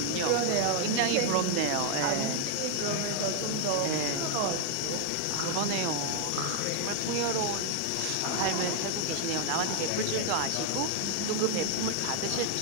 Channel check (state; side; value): different; both; correlation 0.00